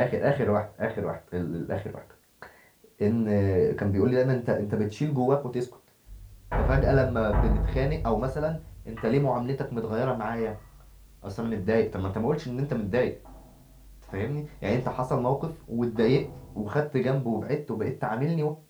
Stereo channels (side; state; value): both; identical; correlation 1.00